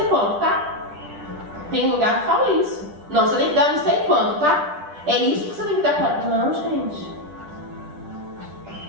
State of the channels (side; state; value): left; late; 10 ms